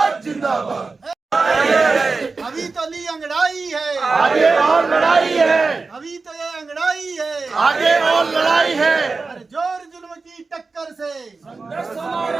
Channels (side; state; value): left; quieter; 4.1 dB